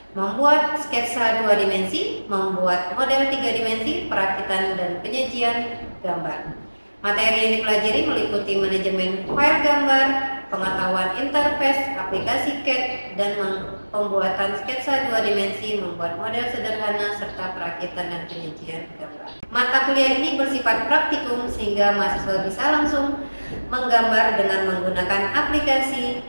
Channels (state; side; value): inverted; both; correlation -1.00